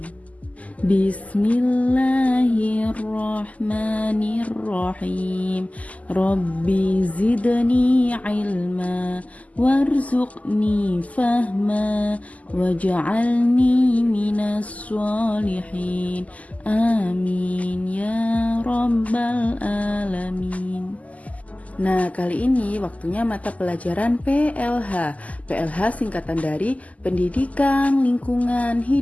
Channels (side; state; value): right; late; 0.073 ms